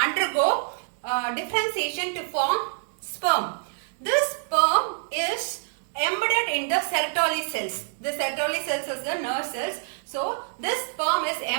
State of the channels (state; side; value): silent; left; digital silence